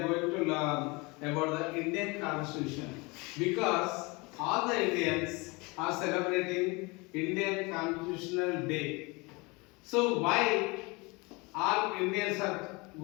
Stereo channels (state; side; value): quieter; right; 26.4 dB